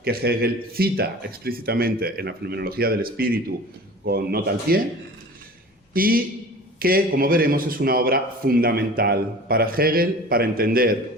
que Hegel cita explícitamente en la Fenomenología del Espíritu con nota al pie, y que, como veremos, es una obra fundamental para Hegel para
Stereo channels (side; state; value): both; normal; correlation 0.40